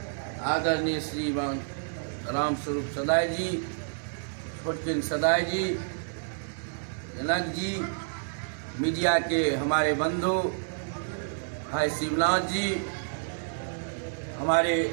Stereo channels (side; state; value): left; silent; digital silence